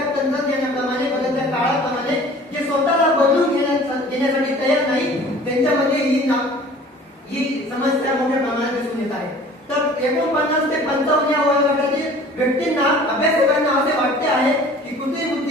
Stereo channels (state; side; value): normal; both; correlation 0.47